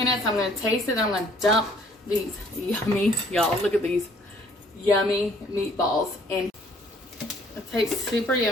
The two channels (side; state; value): both; normal; correlation 0.59